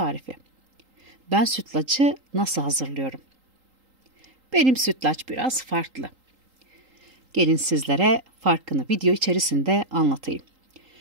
Ben sütlacı nasıl hazırlıyorum? Benim sütlaç biraz farklı. Gelin sizlere farkını video içerisinde anlatayım.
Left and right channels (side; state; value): left; late; 3.8 ms